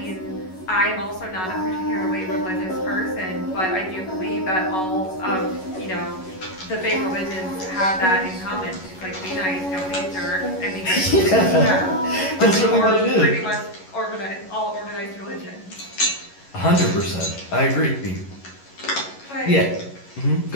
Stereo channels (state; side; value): late; right; 11 ms